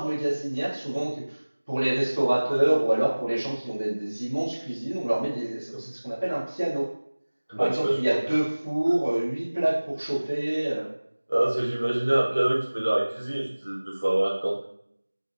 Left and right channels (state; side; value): inverted; both; correlation -1.00